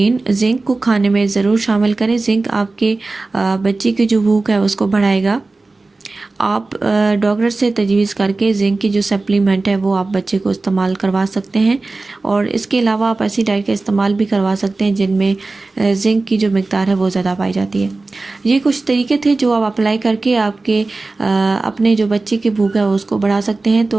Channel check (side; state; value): left; quieter; 3.4 dB